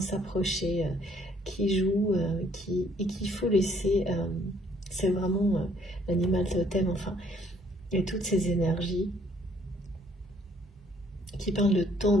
s'approcher, qui joue, et qu'il faut laisser, c'est vraiment l'animal totem, enfin, et toutes ces énergies qui parlent de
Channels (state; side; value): normal; both; correlation 0.63